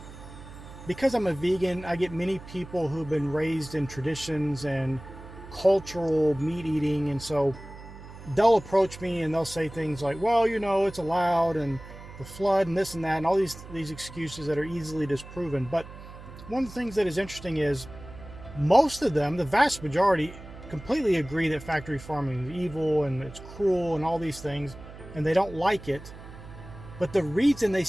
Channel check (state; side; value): noise; right; hum, 15 dB below the sound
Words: Because I'm a vegan, I get many people who've been raised in traditions and cultural meat eating, and so they'll approach me and they'll say things like, well, it's allowed, and the flood and this and that, and all these excuses that are easily disproven. But one of the things that is interesting is most of them, the vast majority, completely agree that factory farming is evil and it's cruel and all these things, and they don't like it. But the reason they